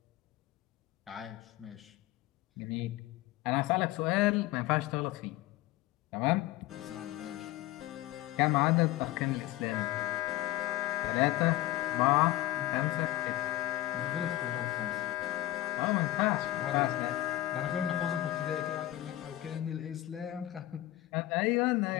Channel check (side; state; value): right; quieter; 16.2 dB